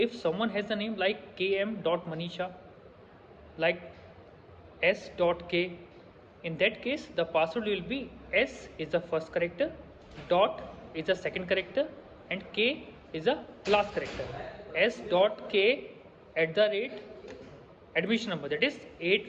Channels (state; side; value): identical; both; correlation 1.00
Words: someone has the name like km.manisha, like s.k, in that case the password will be s is the first character, dot is the second character, and k is the last character. s.k at the rate admission number, that is